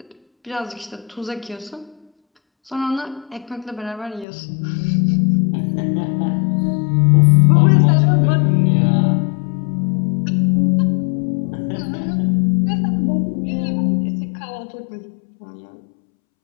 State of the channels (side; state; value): right; drops out; at 4.2 s